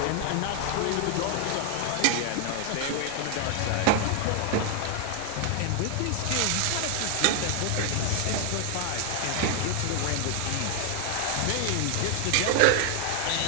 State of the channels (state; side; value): different; both; correlation 0.00